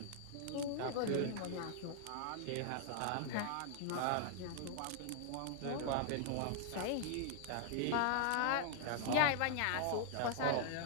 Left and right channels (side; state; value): both; different; correlation -0.01